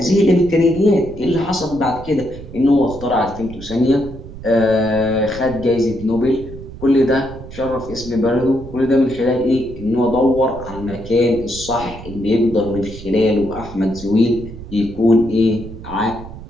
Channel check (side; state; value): right; noise; rumble, 14 dB below the sound